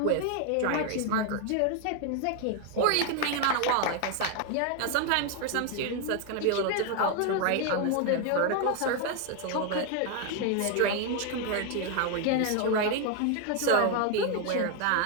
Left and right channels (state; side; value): different; both; correlation 0.01